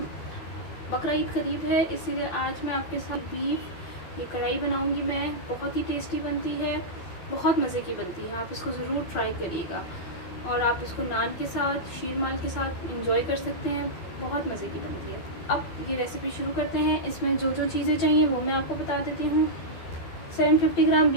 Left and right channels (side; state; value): right; late; 12 ms